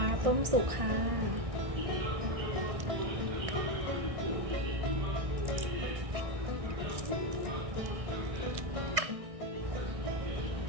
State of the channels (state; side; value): late; left; 1.6 ms